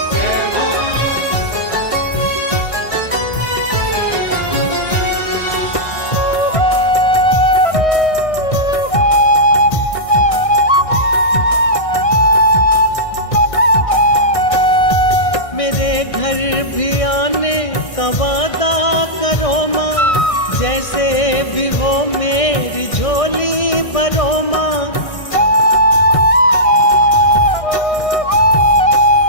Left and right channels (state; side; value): late; right; 1.6 ms